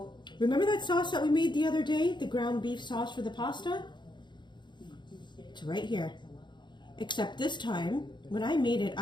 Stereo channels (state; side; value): late; right; 0.22 ms